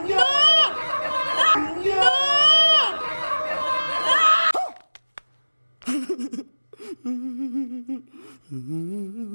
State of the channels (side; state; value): both; inverted; correlation -1.00